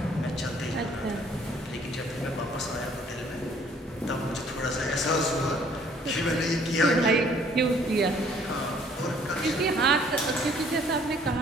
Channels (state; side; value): normal; both; correlation 0.59